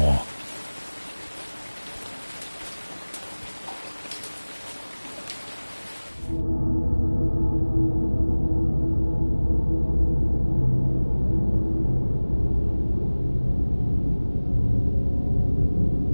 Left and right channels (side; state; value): both; inverted; correlation -1.00